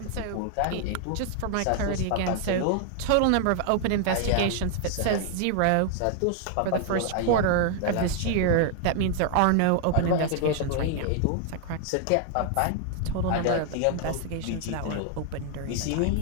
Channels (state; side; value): different; both; correlation 0.00